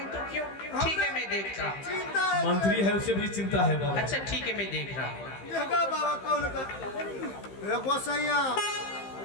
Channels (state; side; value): late; right; 15 ms